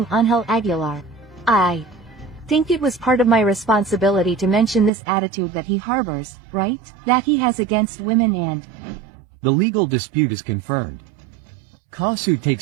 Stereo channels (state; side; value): drops out; left; at 4.9 s